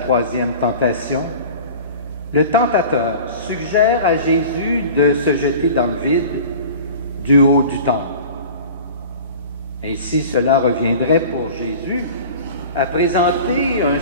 tentation, le tentateur suggère à Jésus de se jeter dans le vide du haut du temple. Ainsi, cela reviendrait pour Jésus à présenter un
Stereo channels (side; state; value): both; inverted; correlation -0.41